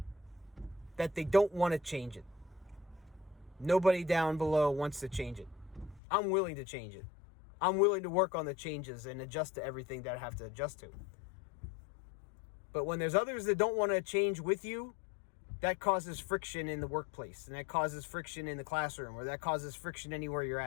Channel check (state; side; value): drops out; right; at 6.0 s